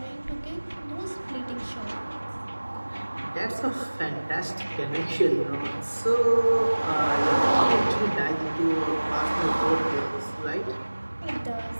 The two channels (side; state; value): both; inverted; correlation -1.00